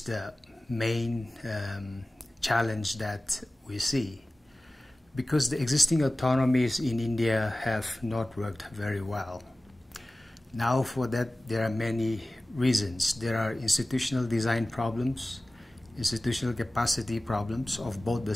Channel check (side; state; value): both; normal; correlation 0.97